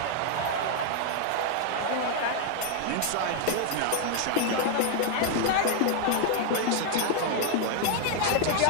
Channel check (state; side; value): different; both; correlation 0.00